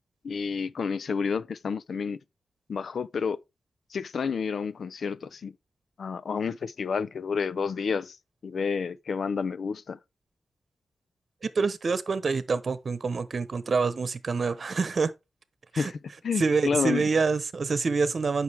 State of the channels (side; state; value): both; normal; correlation 0.85